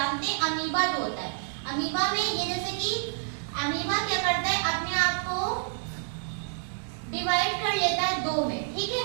हैं अमीबा जो होता है, अमीबा में ये जैसे कि अमीबा क्या करता है, अपने आप को डिवाइड कर लेता है दो में, ठीक है,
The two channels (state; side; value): silent; left; digital silence